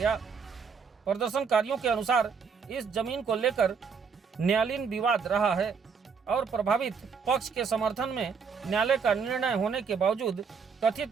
प्रदर्शनकारियों के अनुसार इस जमीन को लेकर न्यायालयीन विवाद रहा है और प्रभावित पक्ष के समर्थन में न्यायालय का निर्णय होने के बावजूद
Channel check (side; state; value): left; quieter; 5.9 dB